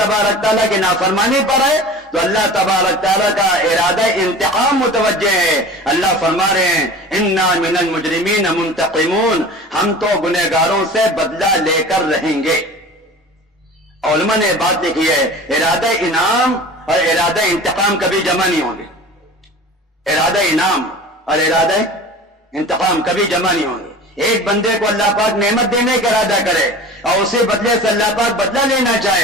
تعالیٰ کی نافرمانی پر ہے تو اللہ تبارک تعالیٰ کا ارادہ انتقام متوجہ ہے. اللہ فرما رہے ہیں انا من المجرمین منتقمون، ہم تو گنہگاروں سے بدلہ لے کر رہیں گے. علماء نے بات لکھی ہے ارادہ انعام اور ارادہ انتقام کبھی جمع نہیں ہوں گے. ارادہ انعام اور ارادہ انتقام کبھی جمع نہیں ہوں گے. ایک بندے کو اللہ پاک نعمت دینے کا ارادہ کرے اور اسی بدلے سے اللہ پاک بدلہ لینا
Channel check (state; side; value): normal; both; correlation 0.38